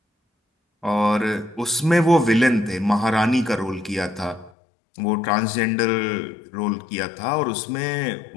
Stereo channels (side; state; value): right; drops out; at 4.5 s